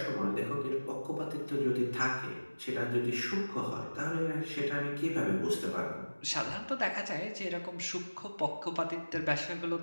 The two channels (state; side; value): inverted; both; correlation -1.00